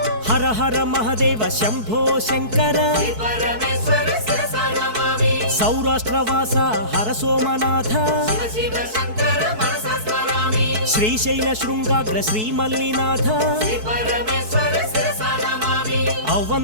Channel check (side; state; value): left; late; 4.6 ms